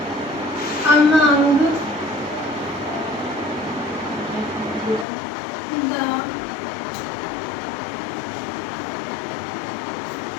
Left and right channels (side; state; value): right; drops out; at 5.1 s